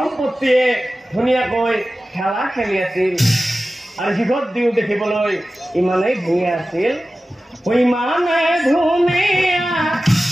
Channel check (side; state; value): both; normal; correlation 0.95